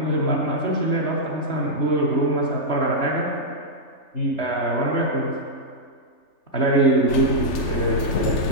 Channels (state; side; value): late; right; 3.5 ms